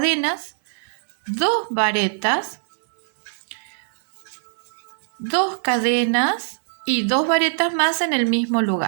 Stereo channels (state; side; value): silent; left; digital silence